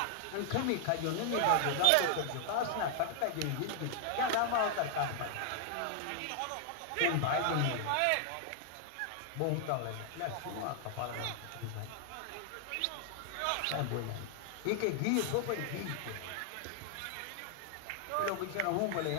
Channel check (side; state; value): both; different; correlation 0.00